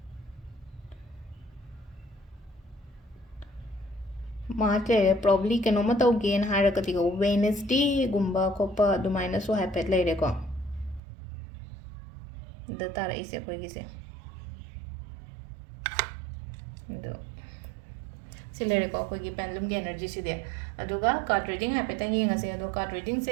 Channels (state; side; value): drops out; left; at 11.0 s